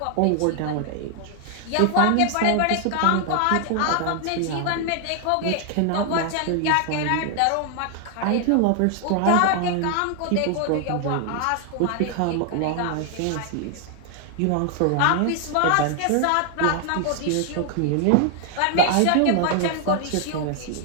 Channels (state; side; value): different; both; correlation 0.00